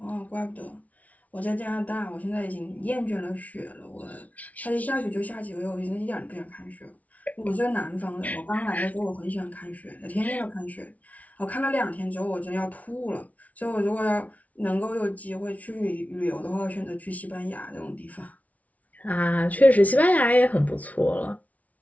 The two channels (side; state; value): right; late; 0.070 ms